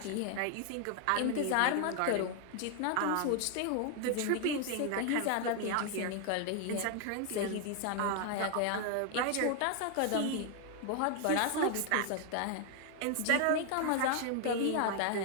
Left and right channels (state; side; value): different; both; correlation 0.00